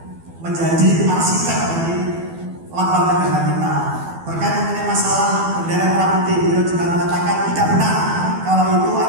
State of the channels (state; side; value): late; left; 12 ms